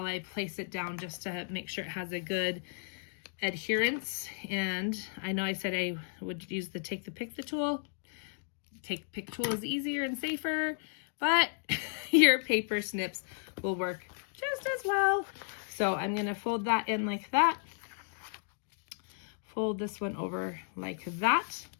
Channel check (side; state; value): right; silent; digital silence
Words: I place it down, just to make sure it has a good adherence. And I know I said I would use the take the pick the tool. Pick tool is easier and safer, but your paper snips will work just as well. So I'm going to fold that in like that. Fold this one over like that,